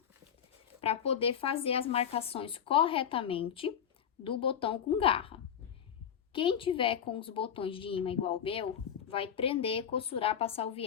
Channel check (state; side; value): quieter; right; 8.6 dB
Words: para poder fazer as marcações corretamente do botão com garra. Quem tiver com os botões de imã igual o meu, vai prender, costurar, passar o